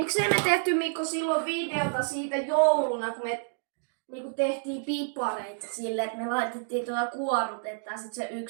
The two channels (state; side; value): silent; left; digital silence